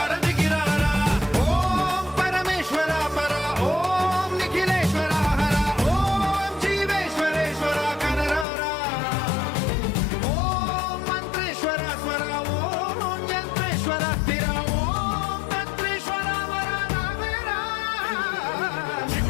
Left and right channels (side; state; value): right; drops out; at 8.5 s